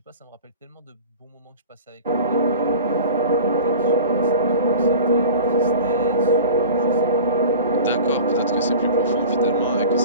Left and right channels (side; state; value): both; inverted; correlation -0.38